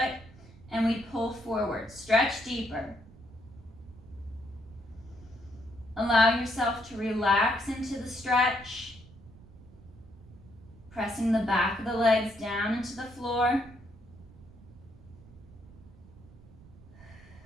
and we pull forward. Stretch deeper. Allow yourself to relax into the stretch. Pressing the back of the legs down into the floor.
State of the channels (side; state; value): right; noise; rumble, 21 dB below the sound